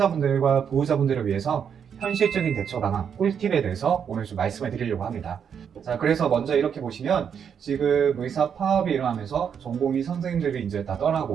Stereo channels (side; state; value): left; quieter; 7.6 dB